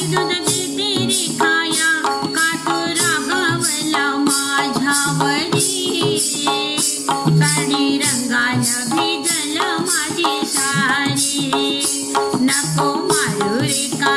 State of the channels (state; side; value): identical; both; correlation 1.00